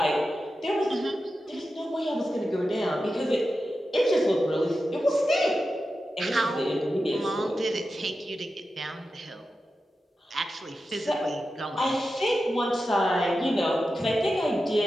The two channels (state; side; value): normal; both; correlation 0.91